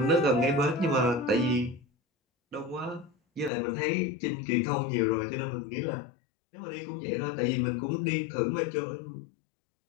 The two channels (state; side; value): drops out; right; at 3.5 s